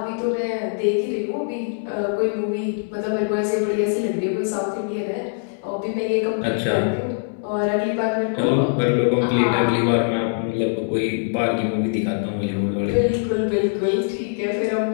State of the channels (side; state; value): right; silent; digital silence